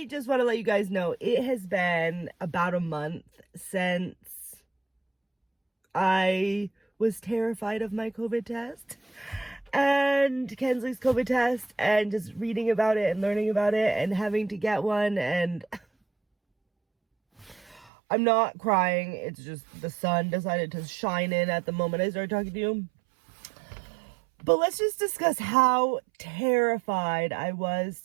just want to let you guys know it has been about a month since I was terrified of my COVID test and Kensley's COVID test, and just reading about it and learning about it and having to get one. And I'm not crying. It's just the sun decided to shine in at the moment I started talking to you. But let's just discuss how terrified I was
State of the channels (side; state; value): left; drops out; at 17.9 s